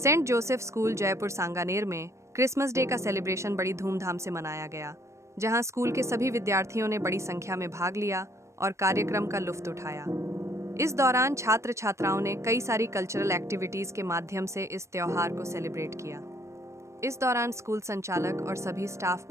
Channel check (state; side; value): late; left; 0.14 ms